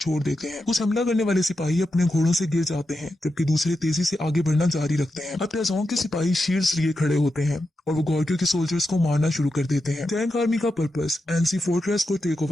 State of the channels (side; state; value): both; normal; correlation 0.88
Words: देते हैं। कुछ हमला करने वाले सिपाही अपने घोड़ों से गिर जाते हैं, जबकि दूसरे तेजी से आगे बढ़ना जारी रखते हैं। अब टैजोंग के सिपाही शील्ड्स लिए खड़े होते हैं और वो गॉर्गियों के सोल्जर्स को मारना शुरू कर देते हैं। टैंक आर्मी का पर्पस एनसी फोर्ट्रेस को टेक